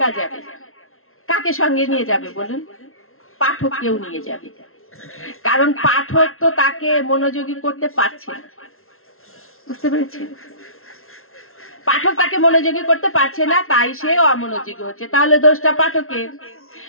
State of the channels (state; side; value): late; right; 0.62 ms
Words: যাবে, কাকে সঙ্গে নিয়ে যাবে বলুন? পাঠক কেউ নিয়ে যাবে, কারণ পাঠক তো তাকে মনোযোগী করতে পারছে না। বুঝতে পেরেছেন? পাঠক তাকে মনোযোগী করতে পারছে না, তাই সে অমনোযোগী হচ্ছে। তাহলে দোষটা পাঠকের।